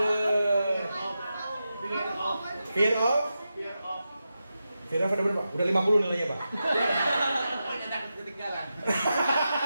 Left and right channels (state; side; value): inverted; both; correlation -0.90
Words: Fear of ada berapa? Udah 50 nilainya Pak.